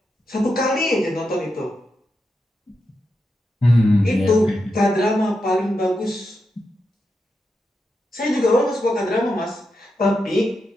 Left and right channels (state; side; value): normal; both; correlation 0.86